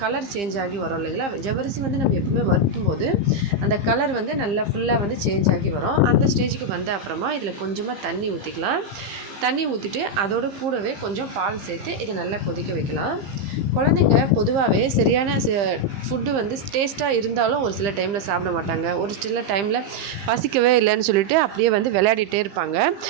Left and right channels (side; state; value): left; late; 15 ms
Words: கலர் சேஞ்ச் ஆகி வரும் இல்லைங்களா? ஜவ்வரிசி வந்து நம்ம எப்பவுமே வறுத்தும் போது அந்த கலர் வந்து நல்லா ஃபுல்லாக வந்து சேஞ்ச் ஆகி வரும். அந்த ஸ்டேஜுக்கு வந்த அப்புறமா இதில் கொஞ்சமாக தண்ணி ஊற்றிக்கலாம். தண்ணி ஊற்றிட்டு அதோடு கூடவே கொஞ்சம் பால் சேர்த்து இதை நல்லா கொதிக்க வைக்கலாம். குழந்தைங்க பொதுவாகவே சரியான ஃபுட்டு வந்து டேஸ்ட்டாக இருந்தாலும் ஒரு சில டைமில் சாப்பிட மாட்டாங்க. ஒரு சில டைமில் பசிக்கவே இல்லைன்னு சொல்லிட்டு அப்படியே வந்து விளையாடிட்டே இருப்பாங்க.